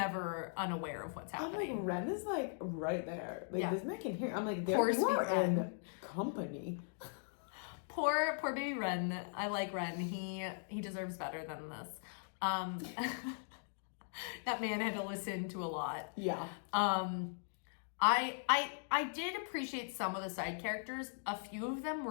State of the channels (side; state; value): right; silent; digital silence